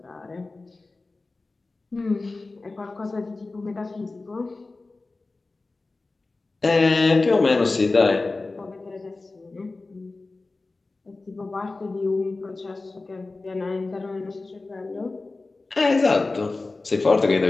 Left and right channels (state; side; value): quieter; right; 3.4 dB